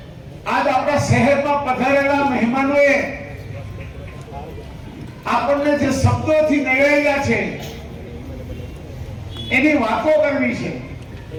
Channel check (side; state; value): both; identical; correlation 1.00